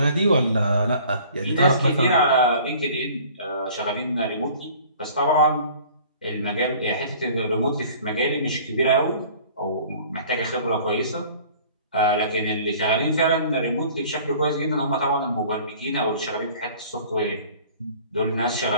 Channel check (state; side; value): inverted; both; correlation -0.49